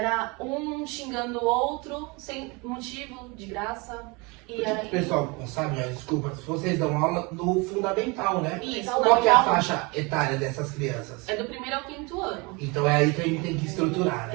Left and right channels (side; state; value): left; quieter; 27.8 dB